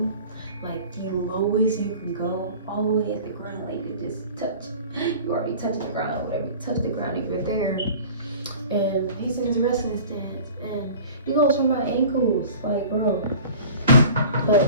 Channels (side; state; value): both; inverted; correlation -0.42